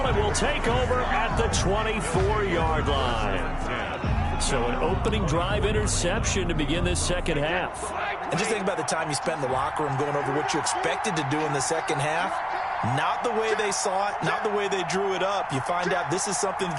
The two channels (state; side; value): identical; both; correlation 1.00